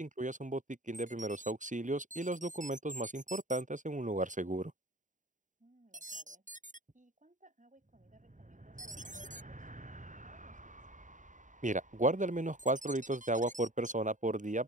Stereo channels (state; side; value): late; left; 0.37 ms